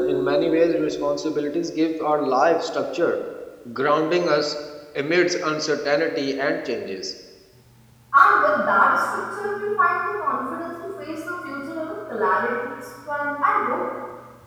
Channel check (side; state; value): both; identical; correlation 1.00